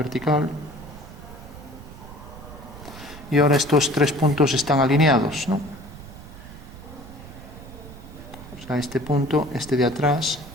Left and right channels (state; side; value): noise; right; rumble, 15 dB below the sound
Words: Y ahora estos tres puntos están alineados, ¿no? O sea, este punto, este de atrás